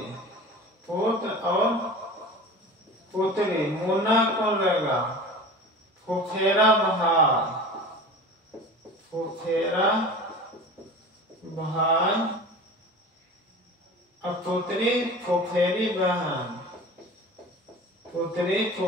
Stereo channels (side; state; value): both; normal; correlation 0.36